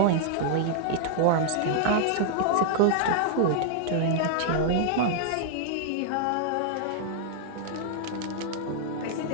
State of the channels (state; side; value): different; both; correlation -0.01